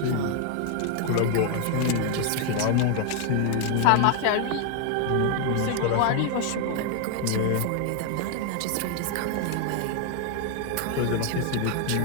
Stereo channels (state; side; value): different; both; correlation 0.01